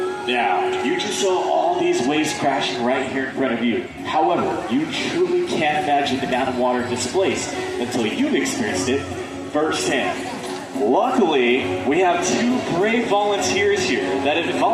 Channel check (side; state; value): both; identical; correlation 1.00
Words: Now, you just saw all these waves crashing right here in front of you. However, you truly can't imagine the amount of water displaced until you've experienced it firsthand. Luckily, we have two brave volunteers here that have